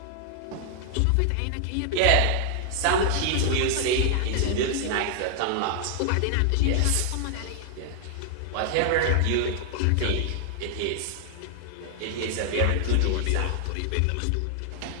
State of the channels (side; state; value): both; different; correlation 0.00